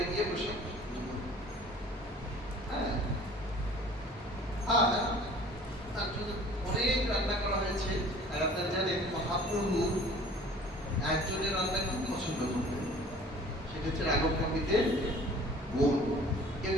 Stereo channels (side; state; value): both; normal; correlation 0.48